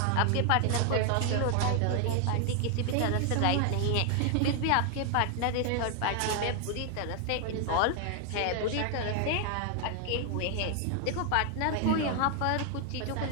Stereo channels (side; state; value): both; different; correlation 0.00